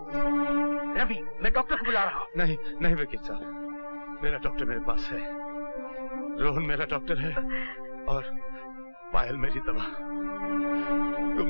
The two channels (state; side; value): inverted; both; correlation -1.00